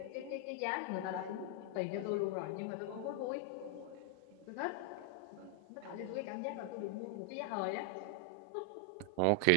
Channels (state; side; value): different; both; correlation 0.00